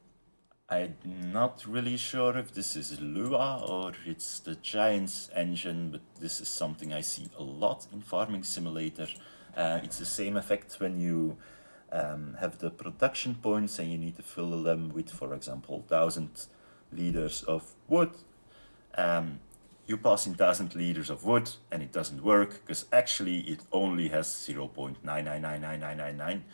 not really sure if this is Lua or it's the Giants engine, but this is something I see a lot in Farming Simulator. It's the same effect when you have the production points and you need to fill them with, for example, 1,000 liters of wood. You pass in 1,000 liters of wood and it doesn't work because actually it only has 0.999999,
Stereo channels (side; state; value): both; inverted; correlation -1.00